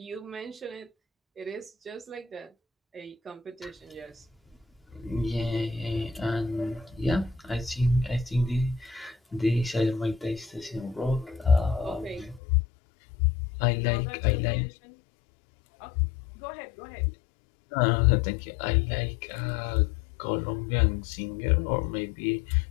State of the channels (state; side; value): drops out; right; at 12.4 s